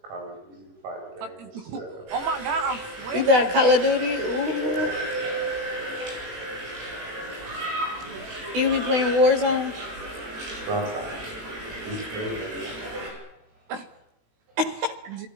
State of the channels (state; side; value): late; left; 18 ms